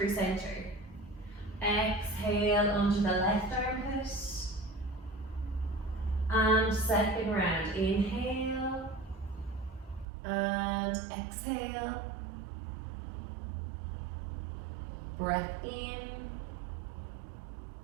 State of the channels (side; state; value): left; drops out; at 10.1 s